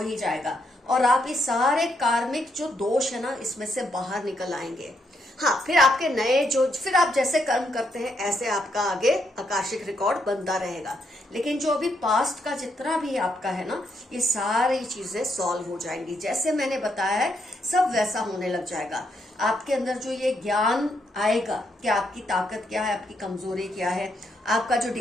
ही जाएगा और आप इस सारे कार्मिक जो दोष है ना, इसमें से बाहर निकल आएंगे। हाँ, फिर आपके नए जो फिर आप जैसे कर्म करते हैं ऐसे आपका आगे आकाशिक रिकॉर्ड बनता रहेगा। लेकिन जो अभी पास्ट का जितना भी आपका है ना, ये सारी चीजें सॉल्व हो जाएंगी। जैसे मैंने बताया है सब वैसा होने लग जाएगा। आपके अंदर जो ये ज्ञान आएगा कि आपकी ताकत क्या है, आपकी कमजोरी क्या है, आपका जो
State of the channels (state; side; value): normal; both; correlation 0.77